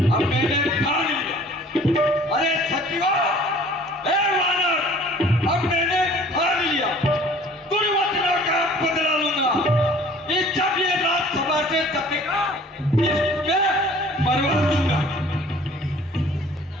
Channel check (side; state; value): both; normal; correlation 0.51